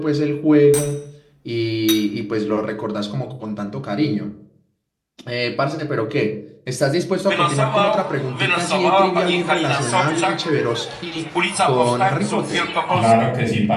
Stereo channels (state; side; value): identical; both; correlation 1.00